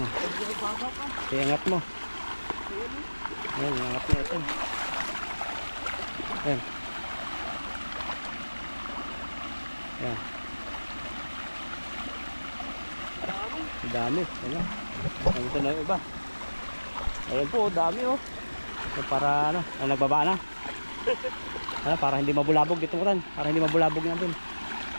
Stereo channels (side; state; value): both; inverted; correlation -1.00